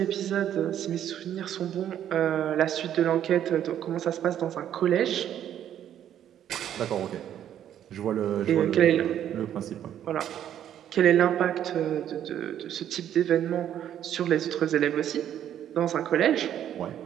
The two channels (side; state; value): left; quieter; 10.5 dB